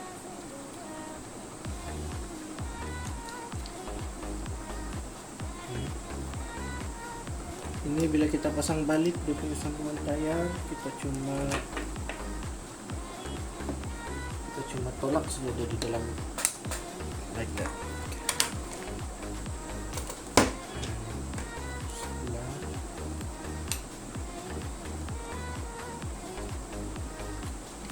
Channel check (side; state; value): both; identical; correlation 1.00